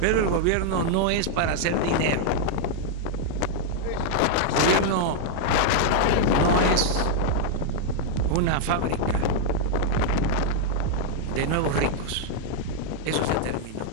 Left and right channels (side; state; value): both; different; correlation -0.01